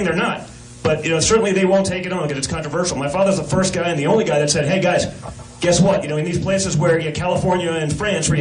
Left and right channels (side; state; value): both; identical; correlation 1.00